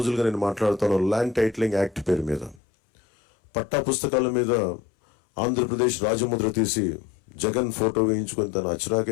నేను మాట్లాడుతాను ల్యాండ్ టైటిలింగ్ యాక్ట్ పేరు మీద. పట్టా పుస్తకాల మీద ఆంధ్రప్రదేశ్ రాజముద్ర తీసి జగన్ ఫోటో వేయించుకొని తన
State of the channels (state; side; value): drops out; right; at 2.6 s